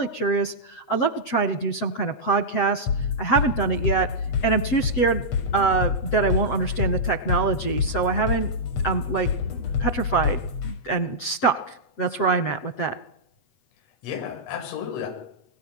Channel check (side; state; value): right; late; 7.5 ms